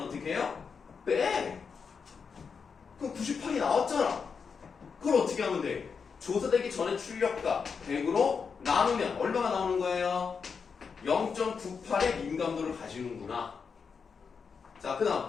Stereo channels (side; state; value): right; quieter; 5.8 dB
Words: 어떻게 해요? 빼! 그럼 98이 나왔잖아. 그걸 어떻게 하면 돼? 조사되기 전에 출력값 100으로 나누면 얼마가 나오는 거예요? 0.98의 민감도를 가지는구나. 자, 그